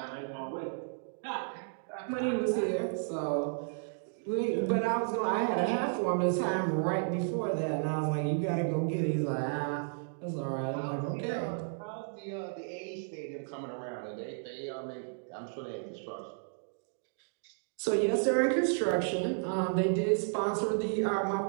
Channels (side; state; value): left; silent; digital silence